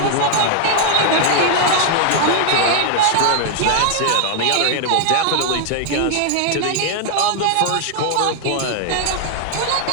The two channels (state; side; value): different; both; correlation 0.00